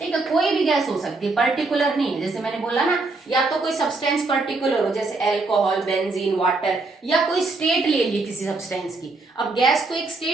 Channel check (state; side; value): quieter; left; 3.5 dB